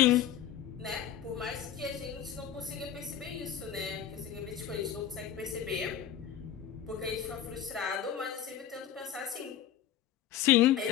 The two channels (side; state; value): right; quieter; 10.1 dB